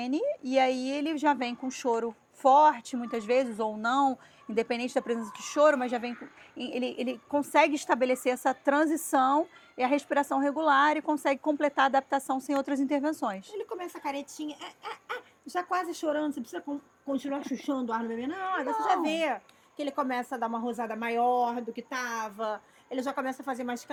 e aí ele já vem com choro forte, muitas vezes, ou não, independente da presença de choro, mas já vem ele consegue estabelecer essa transição e a respiração regular e consegue completar a adaptação sem outras intervenções. Ele começa a caretinha, já quase chorando, você precisa continuar chuchando o ar no bebê. Não, você já vê que ele começa a dar uma rosada maior do que estava, ele já começa a fazer mais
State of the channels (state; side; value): identical; both; correlation 1.00